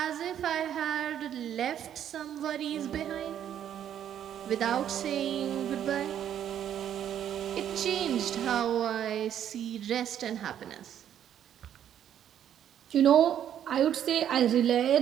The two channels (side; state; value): left; quieter; 10.0 dB